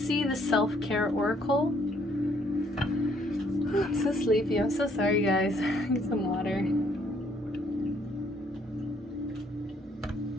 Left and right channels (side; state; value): both; normal; correlation 0.66